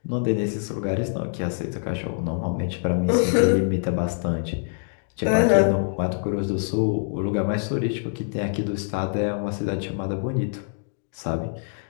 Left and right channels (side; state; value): right; silent; digital silence